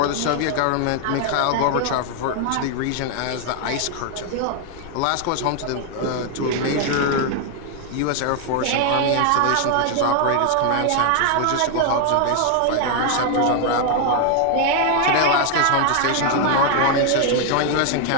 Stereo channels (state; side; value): different; both; correlation 0.01